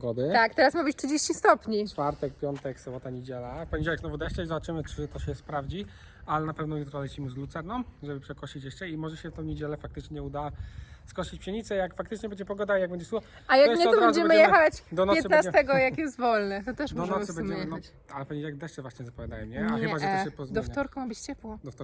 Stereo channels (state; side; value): identical; both; correlation 1.00